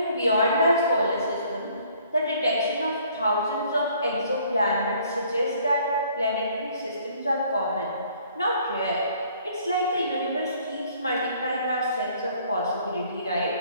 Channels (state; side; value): inverted; both; correlation -0.59